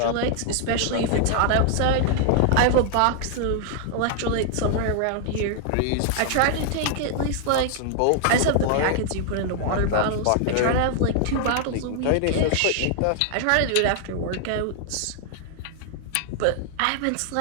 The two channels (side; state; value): both; different; correlation 0.00